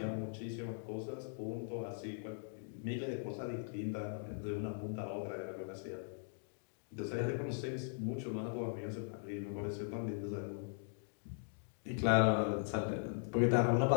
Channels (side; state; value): right; silent; digital silence